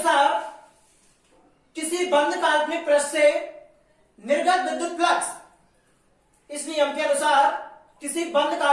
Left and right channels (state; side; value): identical; both; correlation 1.00